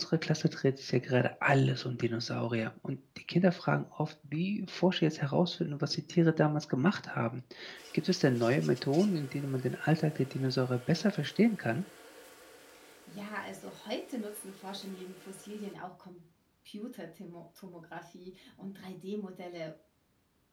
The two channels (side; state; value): both; identical; correlation 1.00